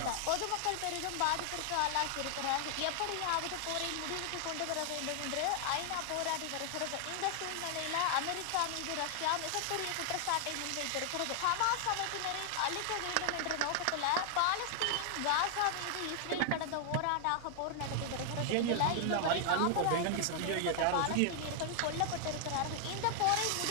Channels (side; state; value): both; different; correlation 0.00